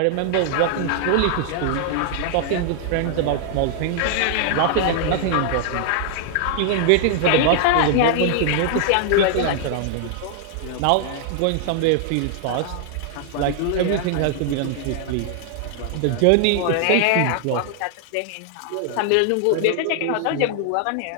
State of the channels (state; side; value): different; both; correlation 0.00